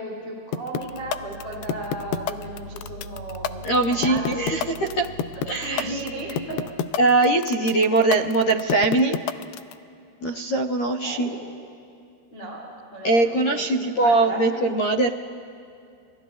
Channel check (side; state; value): right; late; 13 ms